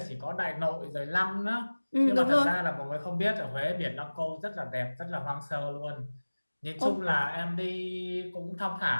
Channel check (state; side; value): inverted; both; correlation -1.00